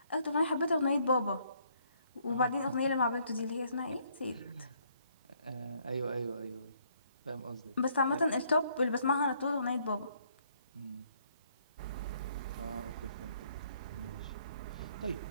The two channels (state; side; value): inverted; both; correlation -0.67